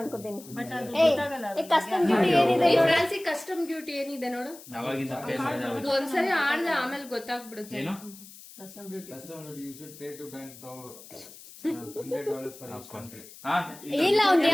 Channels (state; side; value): noise; left; hiss, 18 dB below the sound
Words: ಅನ್ಕೋತೀನಿ. ಕಸ್ಟಮ್ ಡ್ಯೂಟಿ ಏನಿದೆ? ಫ್ರಾನ್ಸಿ ಕಸ್ಟಮ್ ಡ್ಯೂಟಿ ಏನಿದೆ ನೋಡು. ಅವಾಗಿಂದ pay ಮಾಡಿದೆ ಅವಾಗ. ಒಂದ್ಸರಿ ಆಡ್ದೆ ಆಮೇಲೆ ಗೊತ್ತಾಗ್ಬಿಡುತ್ತೆ. ಏನು? you should pay to bank $100 for each country. ಹಾ? ಇಲ್ಲ, ಅವ್ನ್